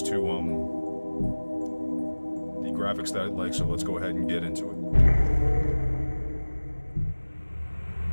to, the graphics that I'd like, so let's go ahead and get into it.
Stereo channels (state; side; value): inverted; both; correlation -1.00